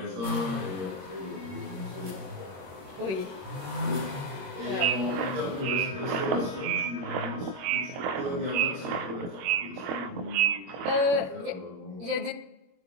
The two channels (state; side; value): late; left; 21 ms